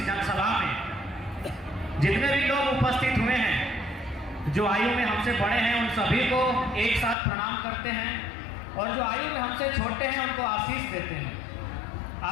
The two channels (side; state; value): right; drops out; at 7.2 s